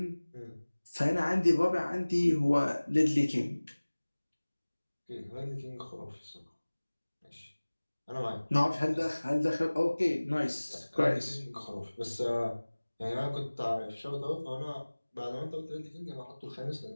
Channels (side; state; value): both; inverted; correlation -1.00